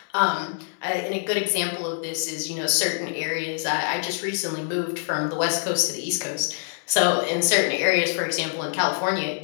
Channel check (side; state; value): right; silent; digital silence